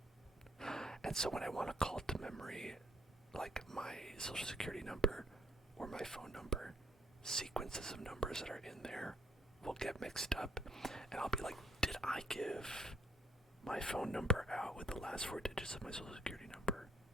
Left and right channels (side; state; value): both; normal; correlation 0.68